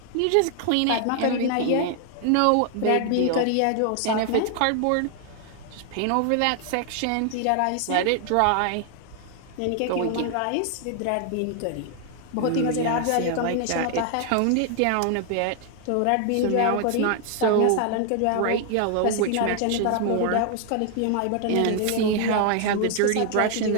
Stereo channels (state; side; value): different; both; correlation 0.00